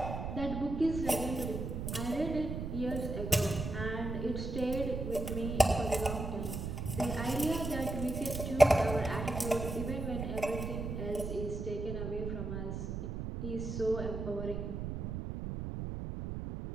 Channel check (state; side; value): noise; right; rumble, 4 dB below the sound